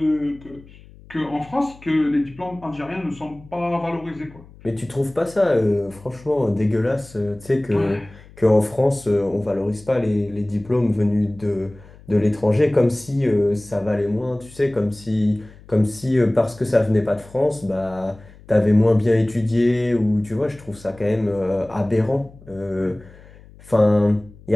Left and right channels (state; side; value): noise; left; hum, 22 dB below the sound